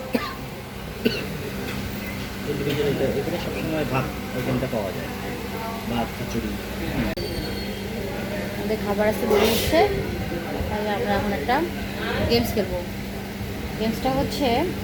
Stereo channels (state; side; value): identical; both; correlation 1.00